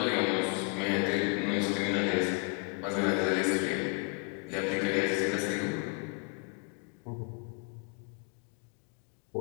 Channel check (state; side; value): quieter; right; 38.1 dB